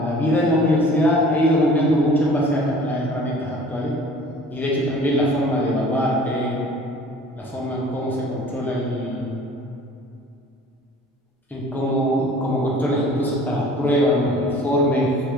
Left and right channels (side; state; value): both; normal; correlation 0.48